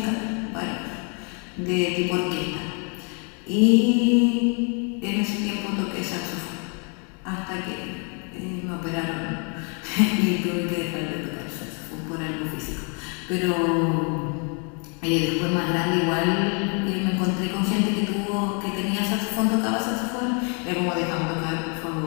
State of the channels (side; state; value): right; quieter; 37.3 dB